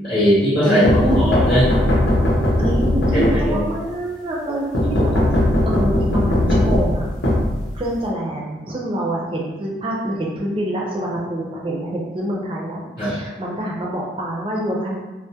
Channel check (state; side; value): normal; both; correlation 0.74